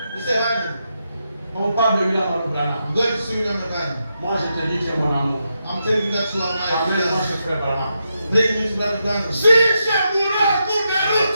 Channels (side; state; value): both; inverted; correlation -0.85